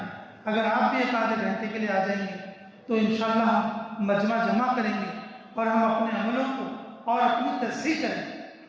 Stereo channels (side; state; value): both; identical; correlation 1.00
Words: اگر آپ بھی ایک آدھے گھنٹے کے لیے آ جائیں گے تو انشاءاللہ ہم مجمع جمع کریں گے اور ہم اپنے عملوں کو اور اپنی تصحیح کریں گے.